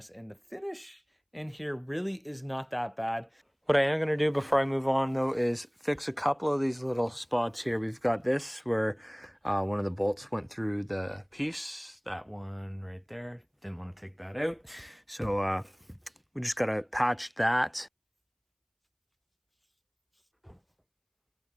And the finish in here really is not that bad. What I am going to do before I move on though is fix a couple of these little spots here. We've got this where one of the bolts went through the piece. That one right there, didn't want to take that out. So we just got to patch that.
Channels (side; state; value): both; identical; correlation 1.00